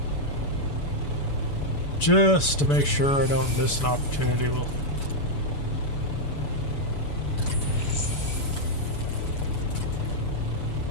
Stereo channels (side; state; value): right; late; 7.0 ms